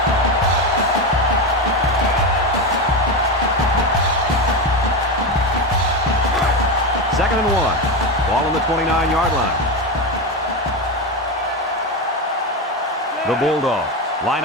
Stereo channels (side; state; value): both; normal; correlation 0.15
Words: Second and 1. Ball on the 29-yard line. The Bulldogs line